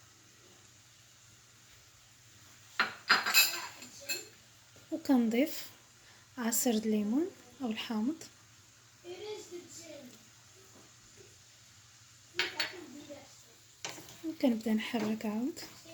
وكنضيف عصير الليمون او الحامض، وكنبدا نحرك عاود.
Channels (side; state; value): both; identical; correlation 1.00